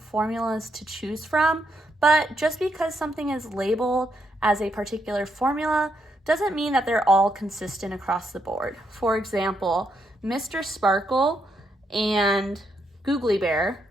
to choose from, but just because something is labeled as a particular formula doesn't mean that they're all consistent across the board. For example, Mr. Sparkle and Googly Bear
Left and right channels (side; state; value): both; normal; correlation 0.78